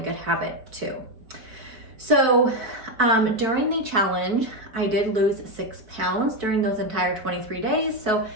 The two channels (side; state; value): left; late; 4.6 ms